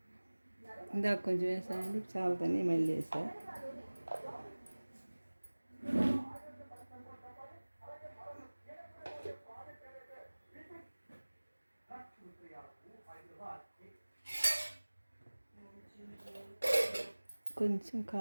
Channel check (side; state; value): both; inverted; correlation -1.00